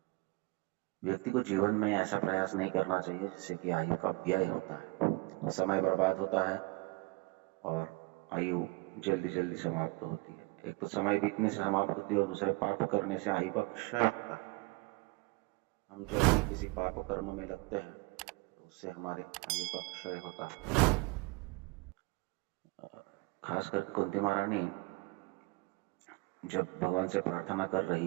व्यक्ति को जीवन में ऐसा प्रयास नहीं करना चाहिए जिससे कि आयु का व्यय होता है, समय बर्बाद होता है और आयु जल्दी जल्दी समाप्त होती है। एक तो समय बीतने से समाप्त होती है और दूसरे पाप करने से आयु का क्षय होता है। हम जब भी किसी पाप कर्म में लगते हैं तो उससे हमारे आयु का क्षय होता है। खास करके कुंती महारानी जब भगवान से प्रार्थना कर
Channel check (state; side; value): quieter; left; 25.7 dB